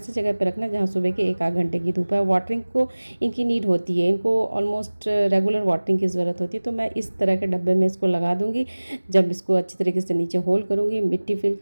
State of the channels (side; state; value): both; inverted; correlation -1.00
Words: जगह पर रखना जहाँ सुबह के 1 आध घंटे की धूप है। वाटरिंग को इनकी नीड होती है, इनको ऑलमोस्ट रेगुलर वाटरिंग की ज़रूरत होती है। तो मैं इस तरह के डब्बे में इसको लगा दूंगी। जब इसको अच्छी तरीके से नीचे होल करूंगी, मिट्टी फिल